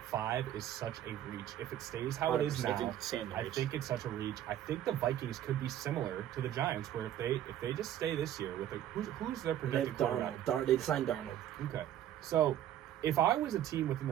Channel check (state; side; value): quieter; left; 11.6 dB